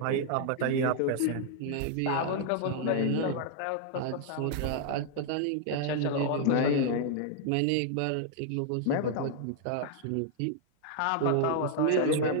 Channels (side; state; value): both; different; correlation 0.00